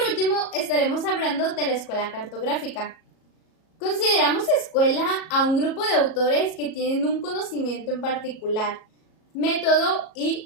último estaremos hablando de la escuela cartográfica. Consideramos escuela a un grupo de autores que tienen un conocimiento en particular, método y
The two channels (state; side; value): late; right; 37 ms